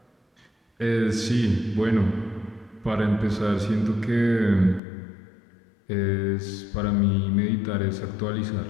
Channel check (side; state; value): right; drops out; at 4.8 s